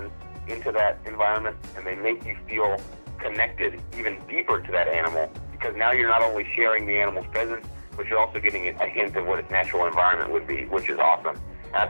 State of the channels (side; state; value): both; inverted; correlation -1.00